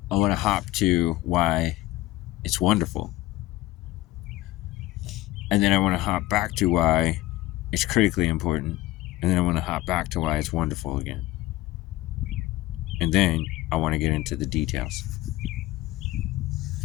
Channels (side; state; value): right; quieter; 16.8 dB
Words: I want to hop to why it's wonderful. And then I want to hop back to why it's critically important. And then I want to hop back to why it's wonderful again. And then I want to get into the details.